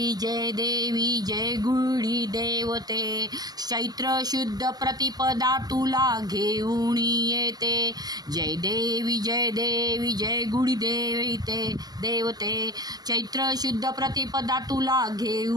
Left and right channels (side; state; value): left; late; 0.19 ms